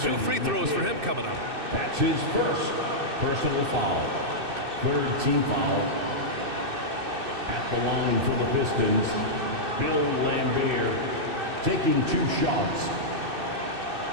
free throws for him coming up. That's his first personal foul. Third team foul. At the line for the Pistons, Bill Lambier taking 2 shots.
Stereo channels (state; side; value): late; left; 2.6 ms